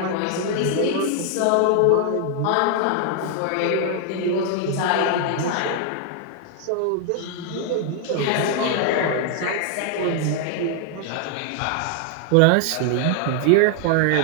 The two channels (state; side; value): different; both; correlation 0.00